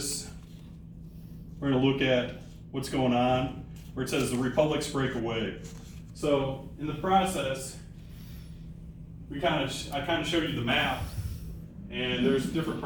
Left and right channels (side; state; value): both; identical; correlation 1.00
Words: We're going to look at what's going on where it says the republics break away. So in the process, I kind of showed you the map, and there's different